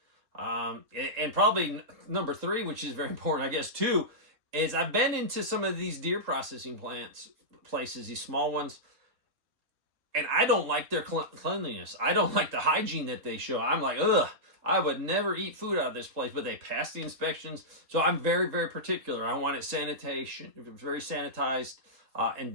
And probably number 3, which is very important, I guess, too, is I've been into some of these deer processing places, these small ones, and I don't like their cleanliness. I don't like the hygiene that they show. I'm like, ugh, I would never eat food out of this place, but they pass the inspections. So I'm very, very particular. I want it very sanitized, and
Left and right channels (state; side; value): late; left; 3.7 ms